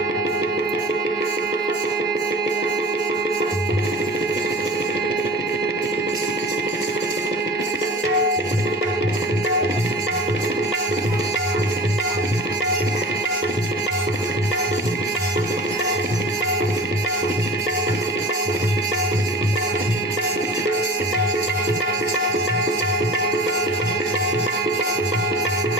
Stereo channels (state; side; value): normal; both; correlation 0.39